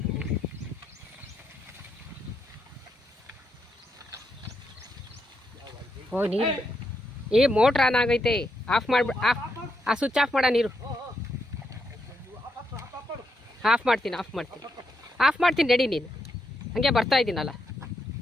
ಓ ನೀರು ಮೋಟ್ರ್ ಆನ್ ಆಗೈತೆ. ಆಫ್ ಮಾಡ್ಬಿಡ. ಆ ಸ್ವಿಚ್ ಆಫ್ ಮಾಡ. ನೀರು ಆಫ್ ಮಾಡ್ತೀನಿ ರೆಡಿ. ನೀನು ಹಂಗೆ ಬರ್ತಾ ಇದ್ದೀನಲ್ಲ.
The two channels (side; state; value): both; normal; correlation 0.80